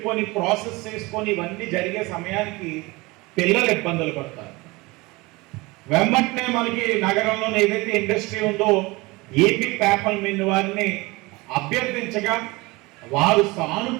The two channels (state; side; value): quieter; left; 23.3 dB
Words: ప్రాసెస్ చేసుకొని ఇవన్నీ జరిగే సమయానికి పిల్లలు ఇబ్బందులు పడతారు. వెంబటనే మనకి నగరంలో ఏదైతే ఇండస్ట్రీ ఉందో ఏపీ పేపర్ మిల్ వారిని అభ్యర్థించగా వారు